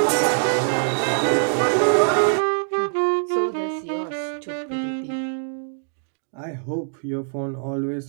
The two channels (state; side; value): silent; left; 63 dB below the other